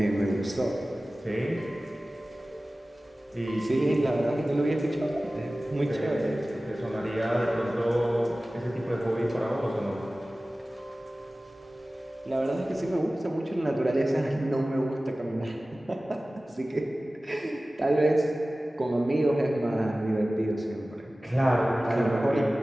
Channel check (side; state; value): both; normal; correlation 0.97